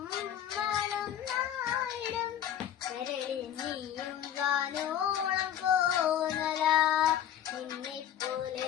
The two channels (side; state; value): right; quieter; 10.4 dB